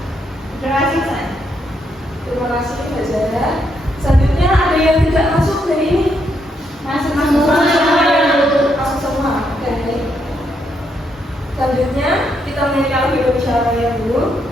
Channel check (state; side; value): normal; both; correlation 0.77